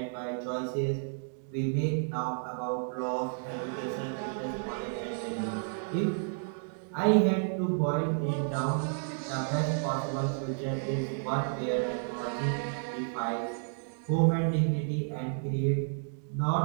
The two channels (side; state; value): left; silent; digital silence